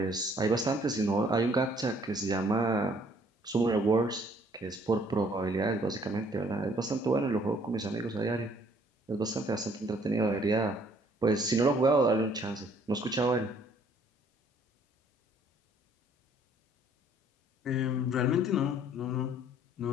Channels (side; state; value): both; normal; correlation 0.61